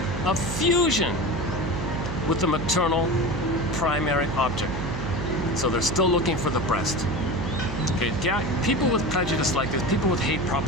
of fusion with the maternal primary object. So they're still looking for the breast. Okay, yeah, people with prejudice like this, people with hate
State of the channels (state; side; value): noise; right; hum, 4 dB below the sound